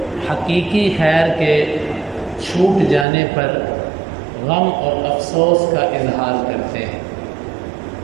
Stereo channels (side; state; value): left; drops out; at 3.1 s